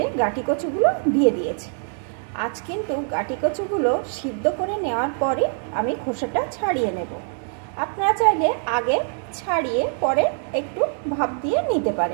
গাঠি কচুগুলো দিয়ে দিয়েছি। আজ কিন্তু গাঠি কচুগুলো সিদ্ধ করে নেওয়ার পরে আমি খোসাটা ছাড়িয়ে নেব। আপনারা চাইলে আগে ছাড়িয়ে পরে একটু ভাপ দিয়ে নিতে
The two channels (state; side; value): silent; left; 56 dB below the other